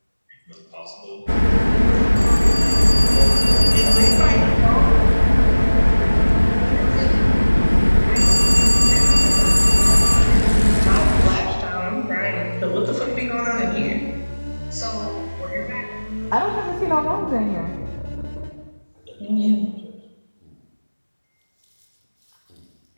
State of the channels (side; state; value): both; inverted; correlation -1.00